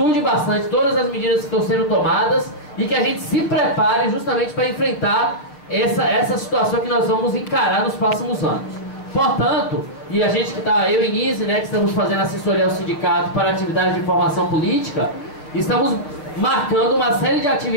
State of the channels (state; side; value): late; right; 6.8 ms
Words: bastante todas as medidas que estão sendo tomadas e que a gente se prepare justamente para enfrentar essa situação que nós vamos encarar nos próximos anos. Portanto, e a gente que está, eu e Nise, né, que estamos fazendo assessoria ao sindicato para atividades de formação política, estamos marcando uma série de